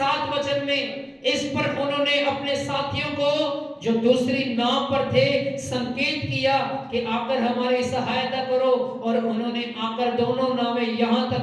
वचन में, इस पर उन्होंने अपने साथियों को जो दूसरी नाव पर थे संकेत किया कि आकर हमारी सहायता करो, और उन्होंने आकर दोनों नावें यहां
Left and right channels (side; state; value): both; identical; correlation 1.00